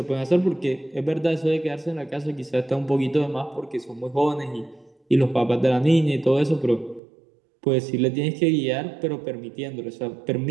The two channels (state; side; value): drops out; left; at 7.0 s